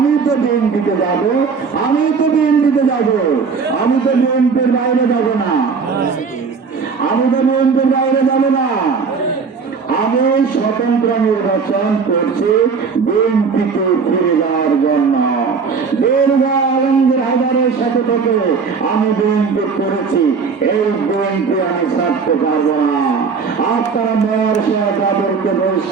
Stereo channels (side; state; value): left; quieter; 5.3 dB